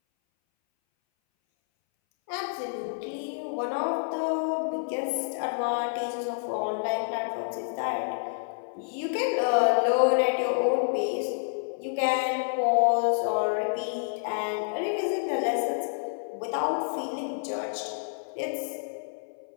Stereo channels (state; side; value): silent; right; 59 dB below the other